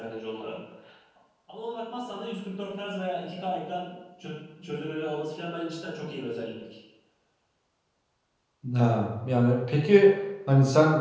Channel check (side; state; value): both; identical; correlation 1.00